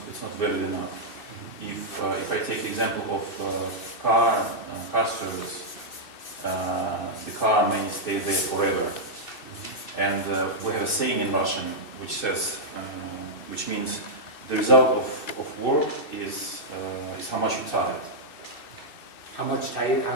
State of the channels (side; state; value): right; late; 2.6 ms